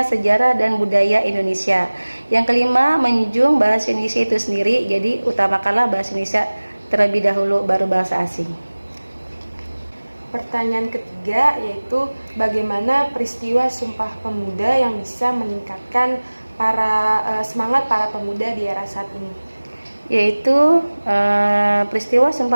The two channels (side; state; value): both; inverted; correlation -1.00